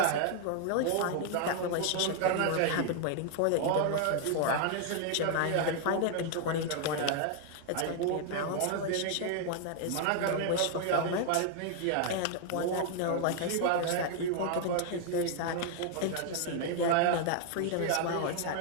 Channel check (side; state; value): both; different; correlation 0.00